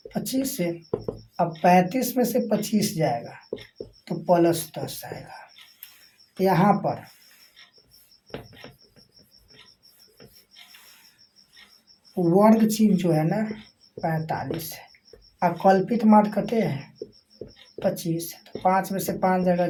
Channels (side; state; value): both; identical; correlation 1.00